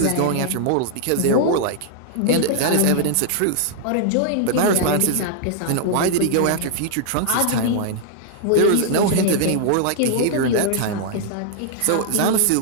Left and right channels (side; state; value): both; different; correlation -0.01